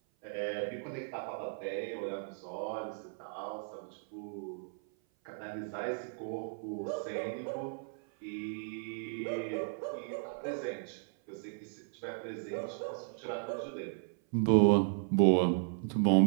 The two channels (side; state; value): left; silent; 54 dB below the other